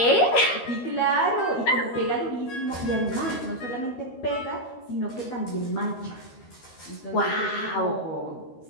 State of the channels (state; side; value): late; right; 13 ms